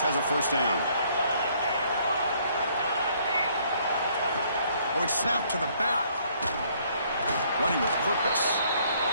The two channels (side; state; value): both; inverted; correlation -0.64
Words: has a first down. Oh, it's snapped to the back. Running with purpose.